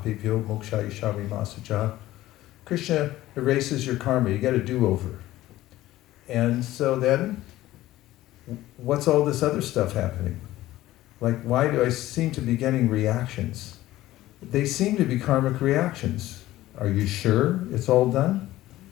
mokshayishavi masaja. Krishna erases your karma. You get a do-over. And so then, what's all this other stuff happening? Like, why do I seem to be getting reactions? They seem to be karmic reactions. Are you sure it's all done?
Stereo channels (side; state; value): right; quieter; 15.7 dB